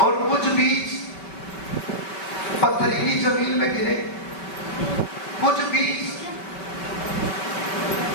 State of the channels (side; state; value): right; late; 5.2 ms